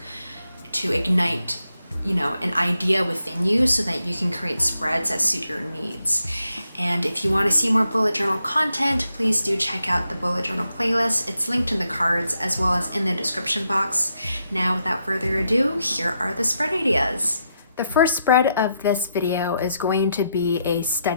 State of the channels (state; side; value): inverted; both; correlation -0.81